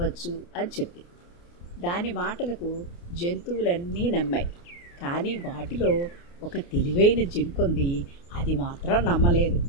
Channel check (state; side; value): late; right; 29 ms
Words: అని చెప్పింది. దాని మాటలకు జంతువులన్నీ నమ్మాయి. కానీ వాటిలో ఒక తెలివైన జింకుంది, అది మాత్రం నమ్మలేదు.